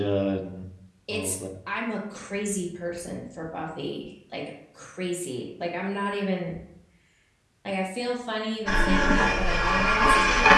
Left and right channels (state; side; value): identical; both; correlation 1.00